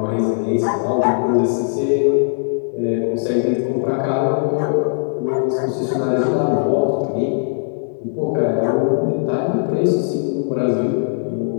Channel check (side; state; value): right; silent; digital silence